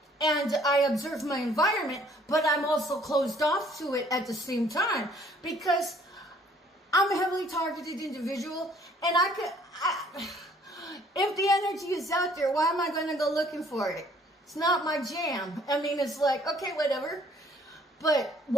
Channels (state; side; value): normal; both; correlation 0.59